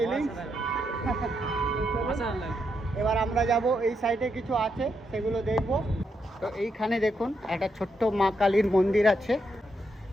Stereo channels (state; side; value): normal; both; correlation 0.80